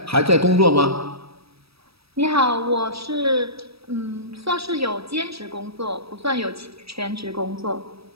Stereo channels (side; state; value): left; late; 0.77 ms